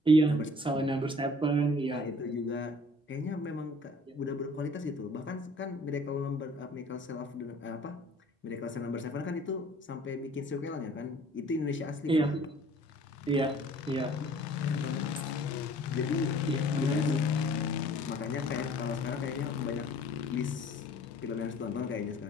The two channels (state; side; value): normal; both; correlation 0.53